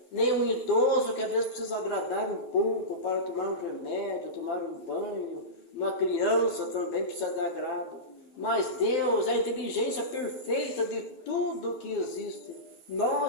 nem um idoso que às vezes precisa agradar um pouco para tomar um remédio, tomar um banho. Uma criança também precisa de agrado. Mas Deus é a inteligência perfeita de tudo que existe.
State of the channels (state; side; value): late; right; 12 ms